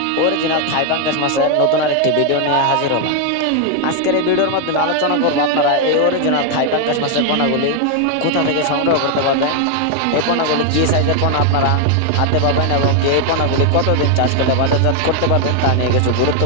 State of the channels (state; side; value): different; both; correlation 0.00